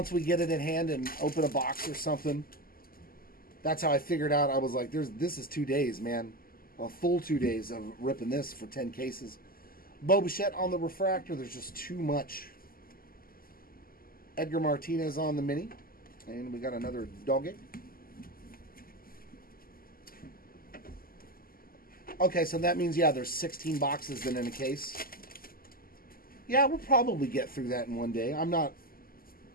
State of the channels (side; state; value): right; late; 0.42 ms